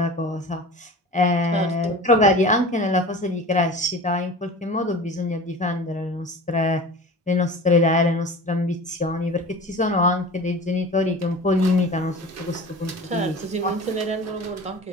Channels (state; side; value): normal; both; correlation 0.36